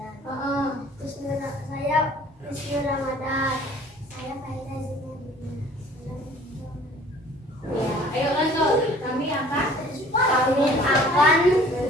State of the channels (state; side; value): normal; both; correlation 0.52